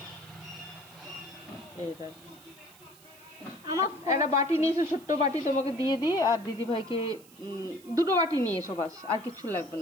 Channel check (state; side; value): noise; right; hiss, 23 dB below the sound